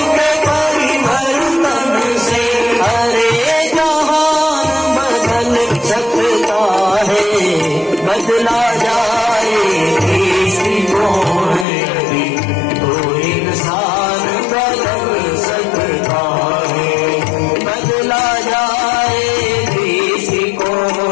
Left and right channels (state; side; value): drops out; right; at 11.7 s